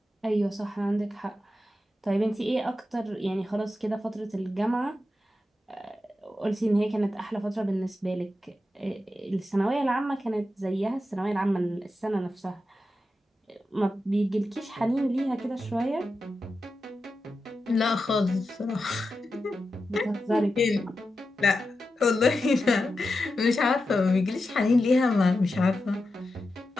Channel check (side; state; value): both; normal; correlation 0.90